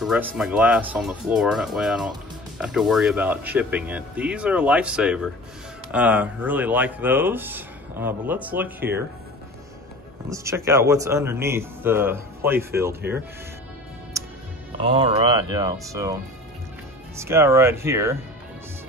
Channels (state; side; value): normal; both; correlation 0.40